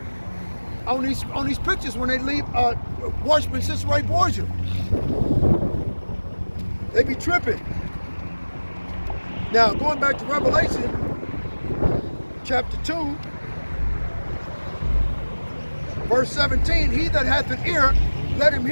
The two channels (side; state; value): both; inverted; correlation -1.00